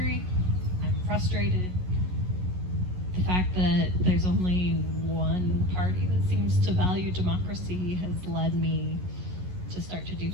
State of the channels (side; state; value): left; late; 11 ms